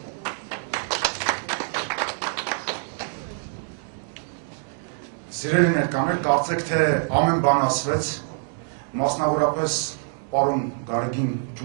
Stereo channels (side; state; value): left; silent; 61 dB below the other